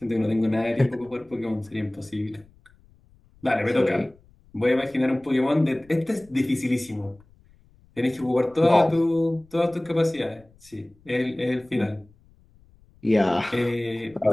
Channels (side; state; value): left; noise; rumble, 29 dB below the sound